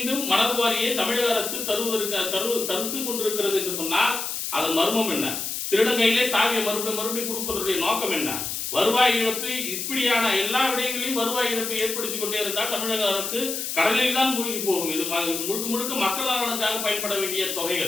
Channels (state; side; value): noise; left; hiss, 4 dB below the sound